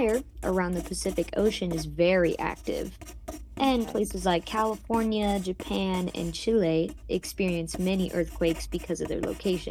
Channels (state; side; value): identical; both; correlation 1.00